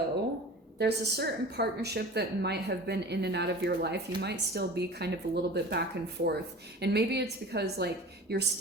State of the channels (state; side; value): normal; both; correlation 0.38